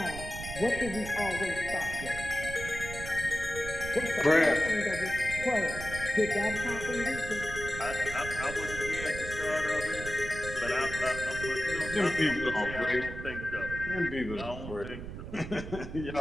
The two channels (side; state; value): right; noise; rumble, 9 dB below the sound